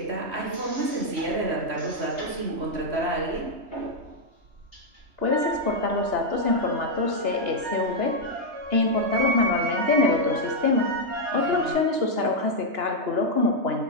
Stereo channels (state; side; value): late; left; 3.1 ms